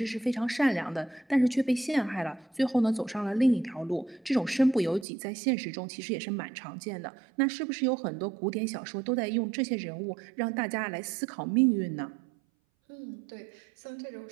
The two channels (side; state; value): left; drops out; at 5.1 s